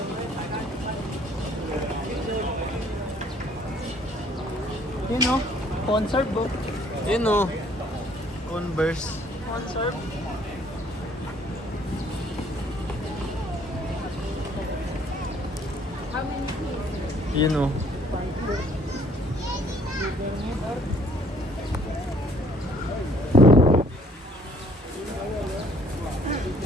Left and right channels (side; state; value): both; normal; correlation 0.61